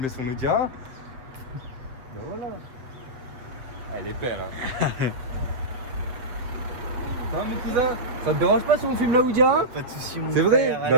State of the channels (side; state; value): left; late; 7.8 ms